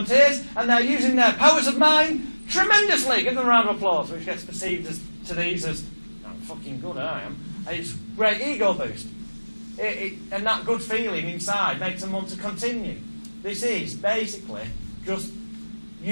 and they're using their powers of mind tremendously. Give them a round of applause, which gets perceived as, to these as, I'm fucking good, I am. It's great ego boost. And that good feeling inside makes them want to continue. This is basically just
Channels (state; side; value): inverted; both; correlation -1.00